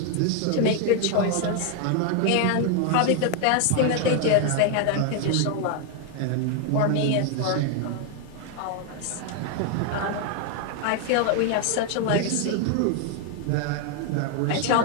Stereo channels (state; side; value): different; both; correlation 0.01